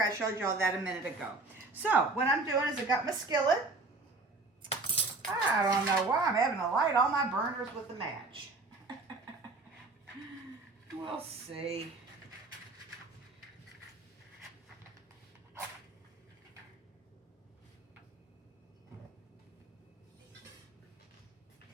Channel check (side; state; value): left; quieter; 3.4 dB